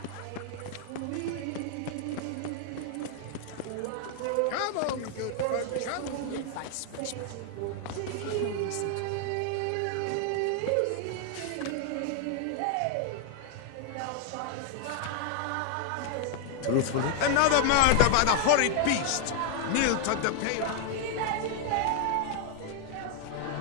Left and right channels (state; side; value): different; both; correlation 0.00